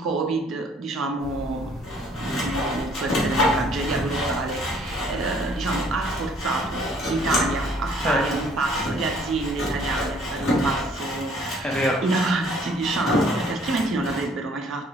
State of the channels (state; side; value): normal; both; correlation 0.59